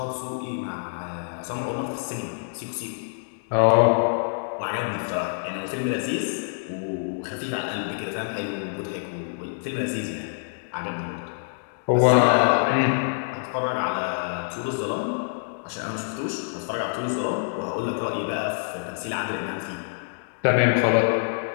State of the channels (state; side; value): silent; right; digital silence